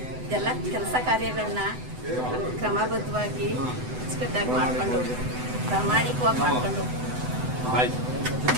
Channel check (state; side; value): late; left; 8.0 ms